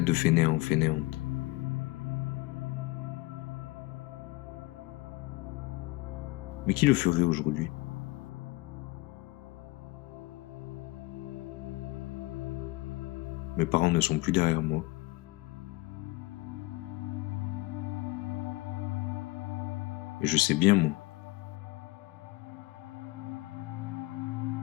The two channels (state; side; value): quieter; right; 21.3 dB